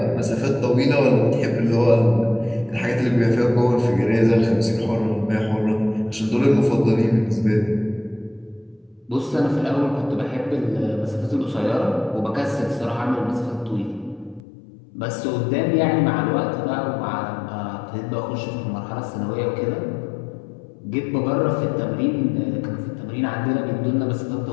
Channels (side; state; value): right; drops out; at 14.4 s